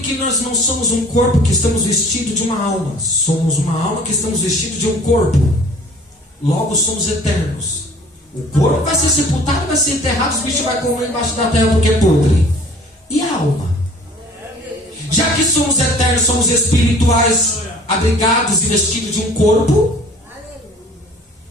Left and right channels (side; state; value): both; normal; correlation 0.50